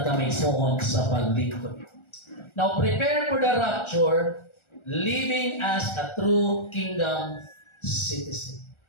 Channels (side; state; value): right; late; 1.4 ms